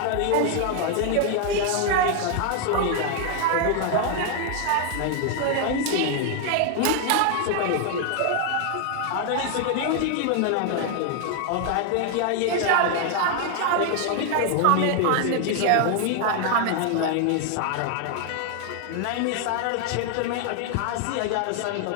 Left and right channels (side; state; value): both; different; correlation 0.00